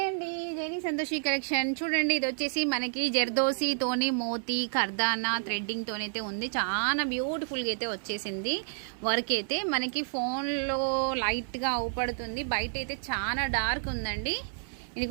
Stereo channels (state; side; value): silent; left; 58 dB below the other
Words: అండి, జైని సంతోషి కలెక్షన్. చూడండి, ఇది వచ్చేసి మనకి జర్దోసీతోని మోతీ కర్దానా థ్రెడ్డింగ్ తోనైతే ఉంది. చాలా బ్యూటిఫుల్గా అయితే వచ్చేసింది. వర్క్ అయితే మనకి ఫోన్లో లైట్గా అవుపడుతుంది, బయట అయితే చాలా డార్క్ ఉందండి.